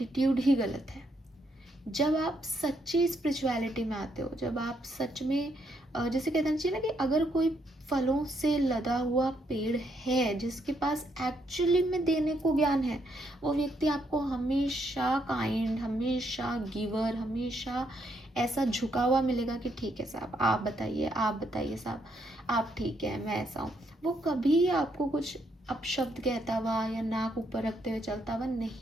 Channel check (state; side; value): normal; both; correlation 0.75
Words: ही गलत है। जब आप सच्ची स्पिरिचुअलिटी में आते हो, जब आप सच में जैसे कहना चाहिए ना कि अगर कोई फलों से लदा हुआ पेड़ है जिसके पास एक्चुअली में देने को ज्ञान है, वो व्यक्ति आपको हमेशा काइंड, हमेशा गिवर, हमेशा ऐसा झुका हुआ मिलेगा कि ठीक है साहब आप बताइए साहब आप ठीक है, मैं ऐसा हूँ। वो कभी आपको कुछ अपशब्द कहता हुआ या नाक ऊपर रखते हुए चलता हुआ